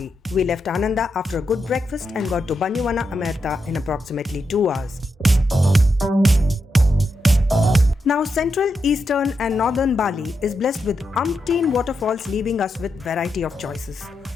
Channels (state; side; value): normal; both; correlation 0.85